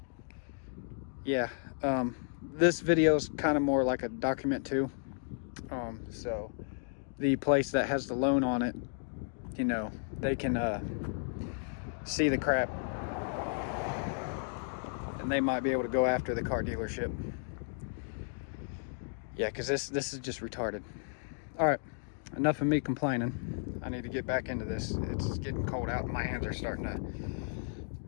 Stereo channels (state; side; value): silent; right; digital silence